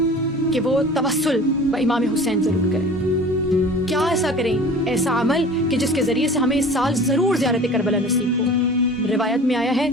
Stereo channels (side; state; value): both; normal; correlation 0.41